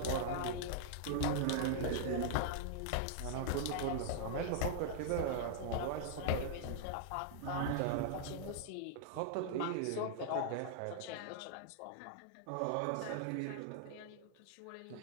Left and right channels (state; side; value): different; both; correlation -0.01